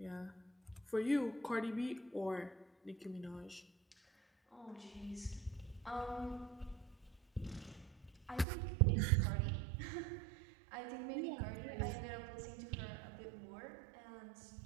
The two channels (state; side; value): drops out; left; at 8.5 s